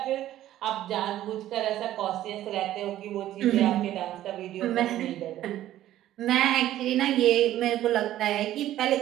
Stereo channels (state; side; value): quieter; left; 13.3 dB